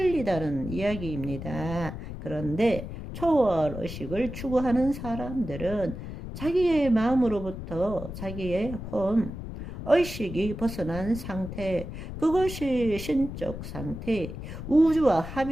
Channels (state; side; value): noise; left; rumble, 9 dB below the sound